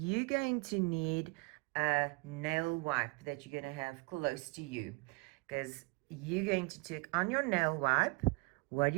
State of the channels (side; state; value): left; quieter; 28.7 dB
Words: going to need a nail wipe that you're going to have close to you, because you're going to take on your nail wipe. What